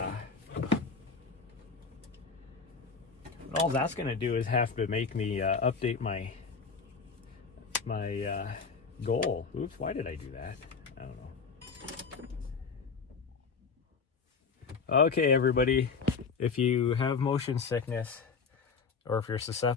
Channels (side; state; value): right; quieter; 5.1 dB